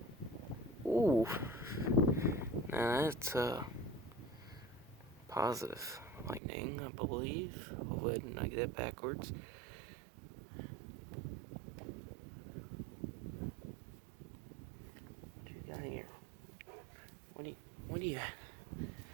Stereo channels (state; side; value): drops out; left; at 6.4 s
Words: Ooh. Now that's positive lightning, I believe. I'll go ahead and I get it backwards. What you got here? What do you